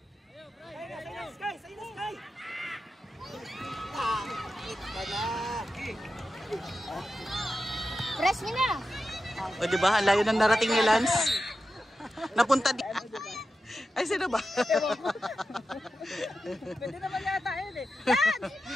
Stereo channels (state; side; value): normal; both; correlation 0.91